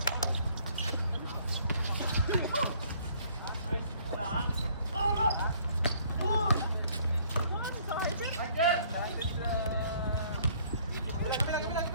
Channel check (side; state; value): both; inverted; correlation -0.60